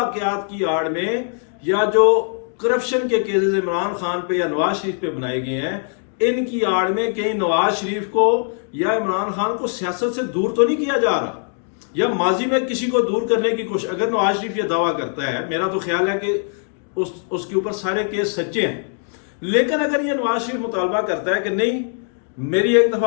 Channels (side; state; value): right; silent; 57 dB below the other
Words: کی آڑ میں یا جو کرپشن کے کیسز عمران خان پہ یا نواز شریف پہ بنائے گئے ہیں، ان کی آڑ میں کہیں نواز شریف کو یا عمران خان کو سیاست سے دور تو نہیں کیا جا رہا، یا ماضی میں کسی کو دور کرنے کی کوشش۔ اگر نواز شریف یہ دعویٰ کرتا ہے، میرا تو خیال ہے کہ اس کے اوپر سارے کیس سچے ہیں، لیکن اگر یہ نواز شریف مطالبہ کرتا ہے کہ نہیں میری ایک